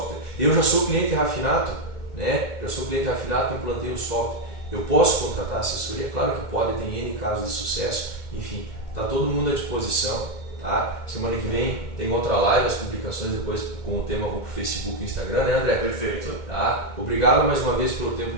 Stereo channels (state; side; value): late; left; 2.1 ms